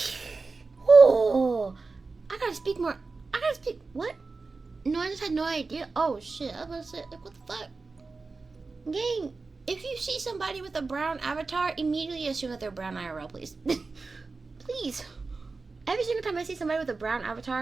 Oh, I gotta speak more. What? No, I just had no idea. Oh, shit. I was about to say, like, what the fuck? Gang, if you see somebody with a brown avatar, immediately assume that they're brown IRL, please. Please. Every single time I see somebody with a brown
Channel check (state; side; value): quieter; left; 4.0 dB